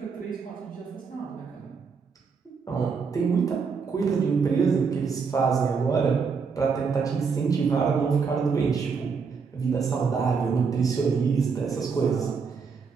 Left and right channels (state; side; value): quieter; left; 5.5 dB